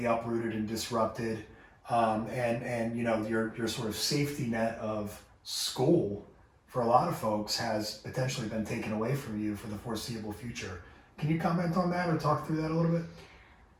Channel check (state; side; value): identical; both; correlation 1.00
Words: uprooted and disrupted, and you know your sort of safety net of school for a lot of folks has potentially been taken away from you for the foreseeable future. Can you comment on that or talk through that a little bit?